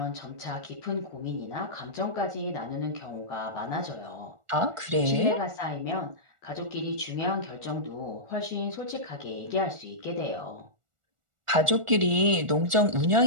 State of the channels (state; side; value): late; left; 1.4 ms